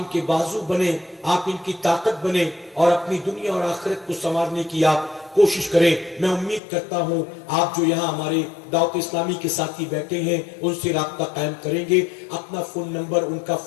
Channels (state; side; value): drops out; right; at 6.6 s